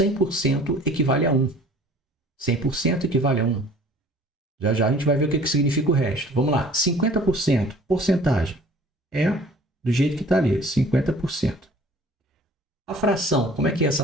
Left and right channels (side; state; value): both; normal; correlation 0.50